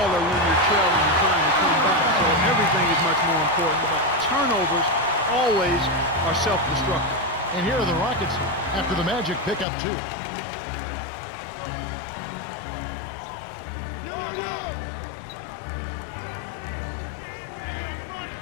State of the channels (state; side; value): drops out; right; at 9.7 s